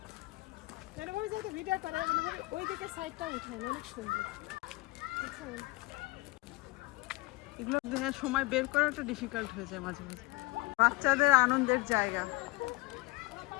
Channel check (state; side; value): quieter; right; 22.7 dB